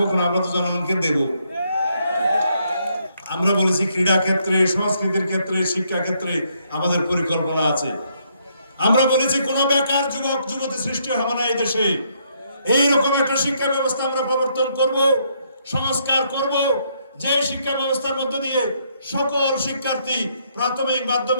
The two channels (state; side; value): inverted; both; correlation -0.72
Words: কেন? আমরা তো জনগণকে দেব। আমরা বলেছি ক্রীড়া ক্ষেত্রে, সংস্কৃতির ক্ষেত্রে, শিক্ষা ক্ষেত্রে আমাদের পরিকল্পনা আছে। আমরা বলেছি কোন বেকার যুবক যুবতী সৃষ্টি হবে না এই দেশে। এইরকম একটা শিক্ষা ব্যবস্থা আমরা প্রবর্তন করব, সংস্কার করব, যে শিক্ষা ব্যবস্থার মধ্য দিয়ে সকল শিক্ষার্থী প্রাথমিক,